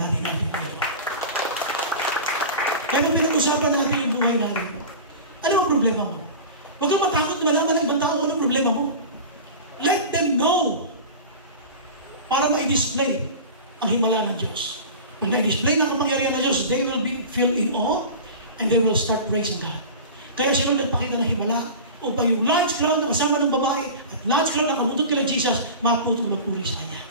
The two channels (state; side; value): inverted; both; correlation -0.32